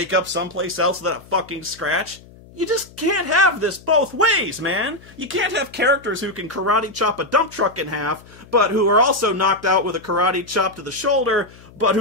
up someplace else with a fucking scratch? You just can't have this both ways, man. You can't have characters who can karate chop a dump truck in half, but who are also knocked out with a karate chop to the shoulder, but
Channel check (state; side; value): noise; left; hum, 23 dB below the sound